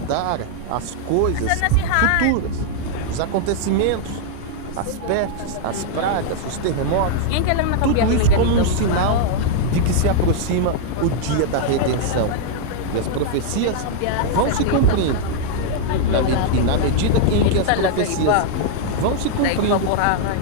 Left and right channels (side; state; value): both; different; correlation -0.01